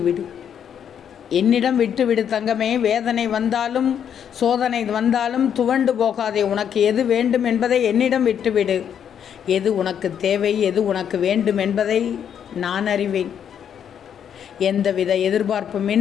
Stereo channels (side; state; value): right; quieter; 8.6 dB